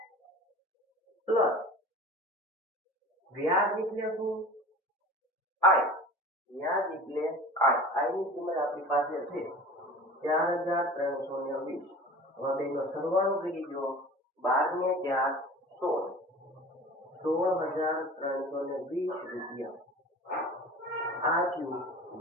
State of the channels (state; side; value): normal; both; correlation 0.39